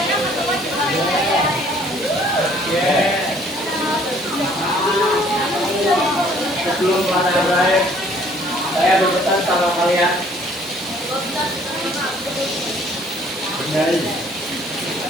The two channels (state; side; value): normal; both; correlation 0.59